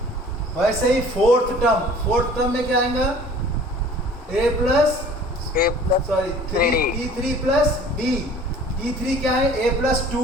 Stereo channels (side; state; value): both; normal; correlation 0.49